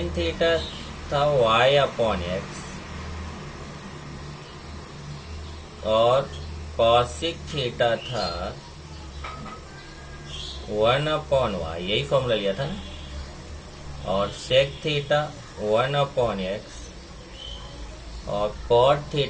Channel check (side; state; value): both; identical; correlation 1.00